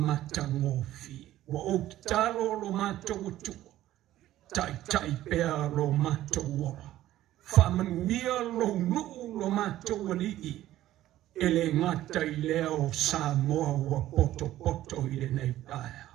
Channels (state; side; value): quieter; left; 14.1 dB